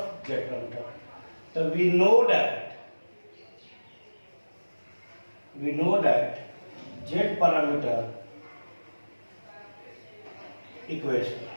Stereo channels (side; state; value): both; inverted; correlation -1.00